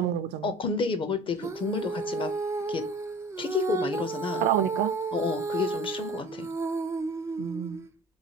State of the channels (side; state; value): both; normal; correlation 0.43